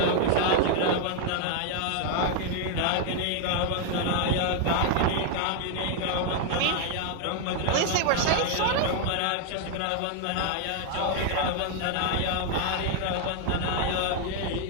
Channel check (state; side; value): different; both; correlation 0.00